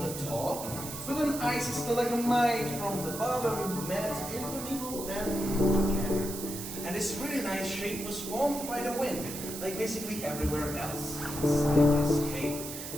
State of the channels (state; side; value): noise; right; hiss, 8 dB below the sound